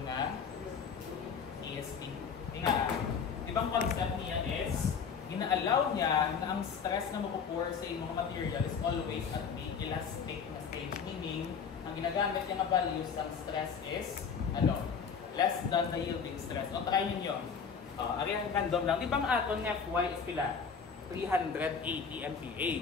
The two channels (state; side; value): quieter; right; 6.2 dB